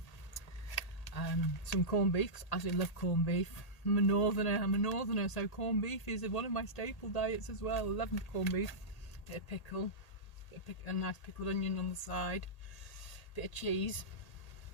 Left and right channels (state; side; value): late; right; 1.8 ms